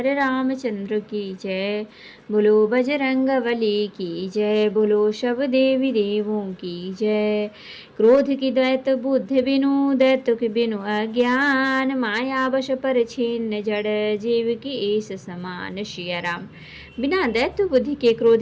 रामचंद्र की जय। बोलो बजरंग बली की जय, बोलो सब देवी देवों की जय। क्रोध की दैत बुद्धि बिनु, दैत्य की बिनु अज्ञान, माया वश पर छिन्न जड़, जीव की ईश समान। सिया राम। बिना दैत्य बुद्धि के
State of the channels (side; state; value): both; identical; correlation 1.00